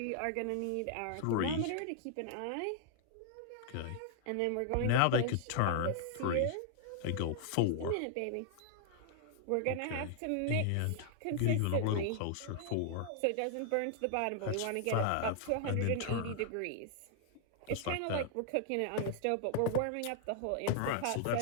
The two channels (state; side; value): different; both; correlation 0.00